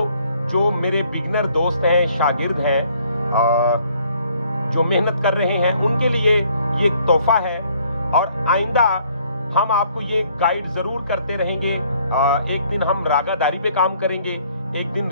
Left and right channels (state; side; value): inverted; both; correlation -0.63